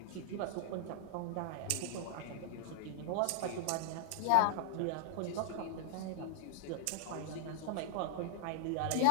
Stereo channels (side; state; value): both; different; correlation -0.01